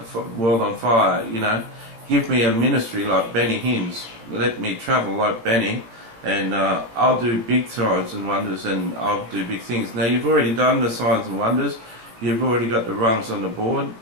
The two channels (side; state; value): left; late; 18 ms